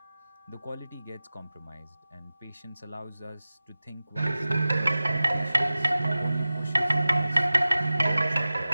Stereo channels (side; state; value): both; inverted; correlation -0.96